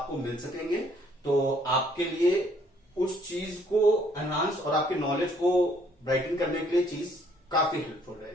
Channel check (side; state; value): both; normal; correlation 0.64